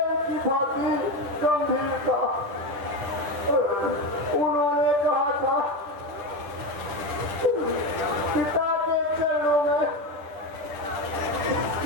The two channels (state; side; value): late; left; 10 ms